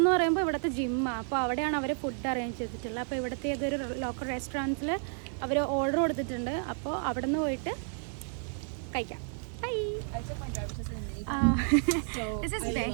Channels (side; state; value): left; silent; 57 dB below the other